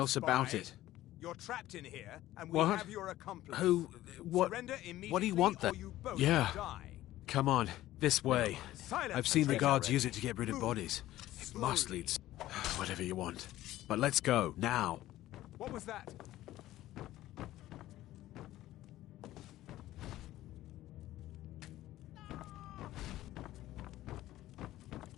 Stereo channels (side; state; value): right; quieter; 15.0 dB